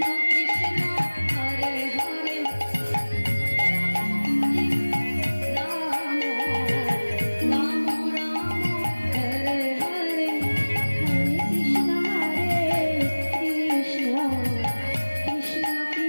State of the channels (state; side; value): inverted; both; correlation -1.00